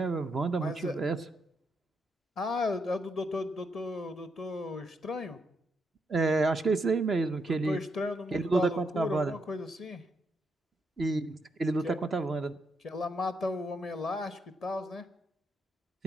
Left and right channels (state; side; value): normal; both; correlation 0.79